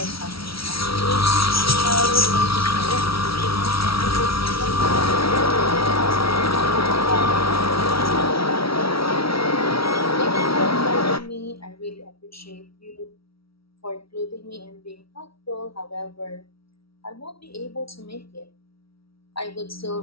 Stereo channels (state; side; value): late; right; 0.75 ms